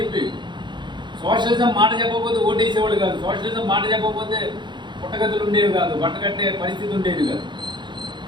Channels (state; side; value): late; left; 0.22 ms